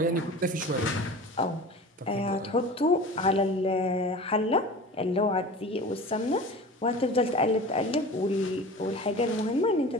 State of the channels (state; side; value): normal; both; correlation 0.37